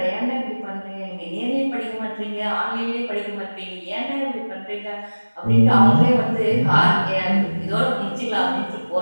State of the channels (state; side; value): inverted; both; correlation -1.00